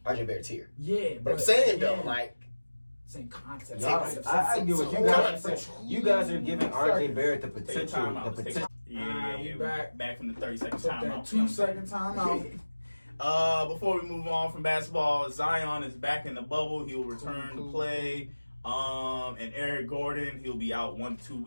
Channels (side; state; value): both; inverted; correlation -1.00